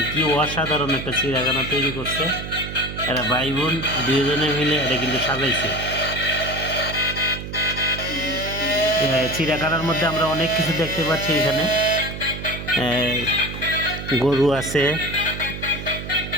কি অসাধারণ একটা চিড়িয়াখানা তৈরি করছে এরা ভাই বোন দুজনে মিলে। এটা কিন্তু সাজাইছে। চিড়িয়াখানার মধ্যে আমরা অনেক কিছু দেখতে পাচ্ছি। এখানে গরু আছে,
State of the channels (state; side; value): noise; right; hum, 8 dB below the sound